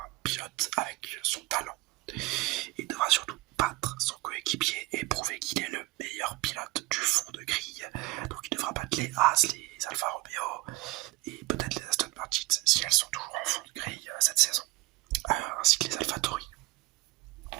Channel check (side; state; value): left; quieter; 21.1 dB